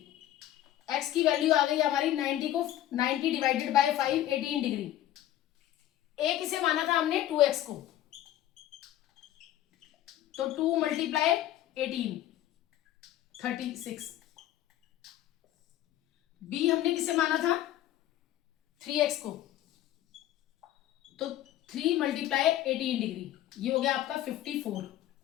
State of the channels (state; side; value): quieter; right; 13.1 dB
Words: x की वैल्यू आ गई हमारी 90 को 90 डिवाइडेड बाय 5 18 डिग्री। a किसे माना था हमने 2x को, तो 2 मल्टीप्लाई 18 36। b हमने किसे माना था 3x को, तो 3 मल्टीप्लाई 18 डिग्री, ये हो गया आपका 54।